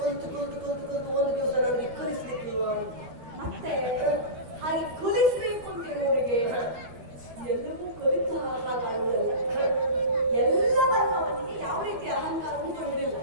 ಕಲಿತು ಒಂದು ದಿವಸ ನನಗೆ ಕಲಿಸ್ಲಿಕ್ಕಿಲ್ವಾ? ಮತ್ತೆ ಹಾಗೆ ಕಲಿಸ್ಬೇಕು ಅಂತಿರುವವರಿಗೆ ಎಲ್ಲವೂ ಕಲಿತ ಹಾಗಾಡುವುದಲ್ಲ. ಎಲ್ಲವನ್ನು ಅವನಿಗೆ ಯಾವ ರೀತಿ ಅಹಂಕಾರವೂ ಬರುವುದಿಲ್ಲ.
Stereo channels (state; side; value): late; left; 13 ms